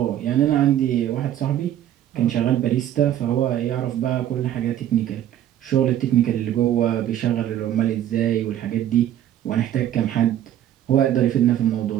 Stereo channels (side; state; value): left; quieter; 11.5 dB